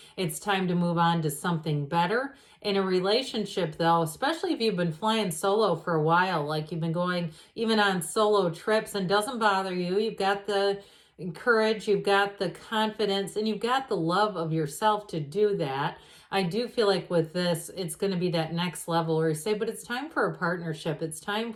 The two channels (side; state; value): both; identical; correlation 1.00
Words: It's time to move on to something better. In a relationship, though, especially if you've been flying solo for a while, like you've been going even on solo trips and doesn't bother you, you've got the courage, you've got the confidence, and you've got the love of yourself to do that. I do feel like with this, it's going to be that next level where you say, but it's time for a partnership. It's time